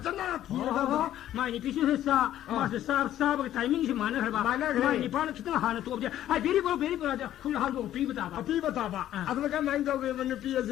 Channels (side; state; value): right; quieter; 12.3 dB